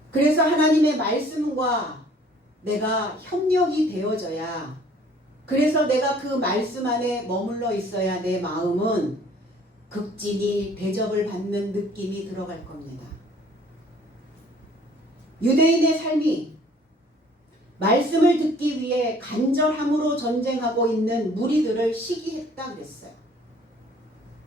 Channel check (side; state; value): both; normal; correlation 0.56